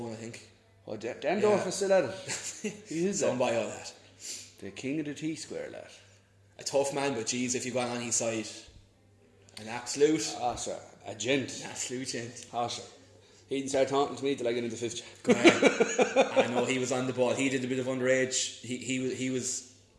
I think. Oh, Dan Dorff is still at it. He is done by all that. The king of the T-square, lad. A tough man, but geez, if you got on his side, an absolute. Ah, sir, a gent. An absolute gent. Ah, sir. He didn't start talking to me till I get into 5th year. I know he was on the ball. He did a bit of underage. He was.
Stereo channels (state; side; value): identical; both; correlation 1.00